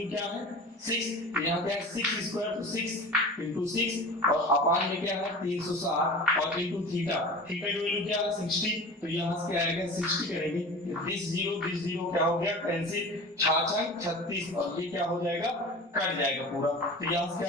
क्या है 6। यहाँ क्या है 6 स्क्वायर, तो 6 इंटू 6, और अपान में क्या है 360, और इंटू थीटा, थीटा की वैल्यू क्या है 60। तो यहाँ से क्या आएगा 60 करेंगे, दिस जीरो क्या हो गया कैंसिल, 66 36, और ये क्या हो जाएगा कट जाएगा पूरा। तो यहाँ से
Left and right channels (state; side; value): normal; both; correlation 0.36